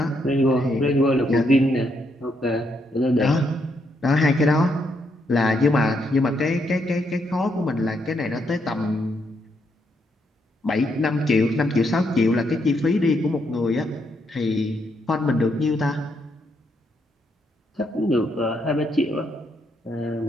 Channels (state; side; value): normal; both; correlation 0.77